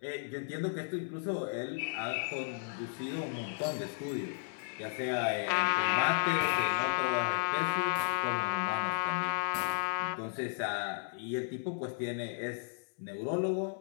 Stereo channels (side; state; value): right; silent; 55 dB below the other